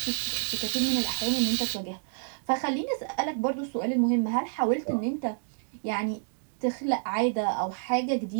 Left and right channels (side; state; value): left; silent; digital silence